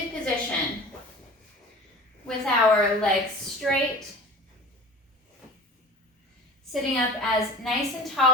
position with our legs straight, sitting up as nice and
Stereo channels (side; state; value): both; normal; correlation 0.40